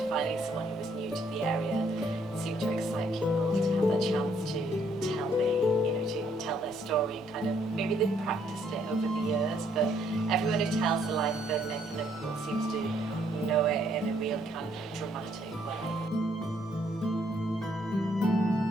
finding someone who was new to the area seemed to excite people to have the chance to tell me, to tell their story, and kind of, maybe they've practiced it over the years, but everyone who tells the live bird myth in Liverpool seems to know it in a real kind of dramatic way.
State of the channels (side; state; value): both; normal; correlation 0.69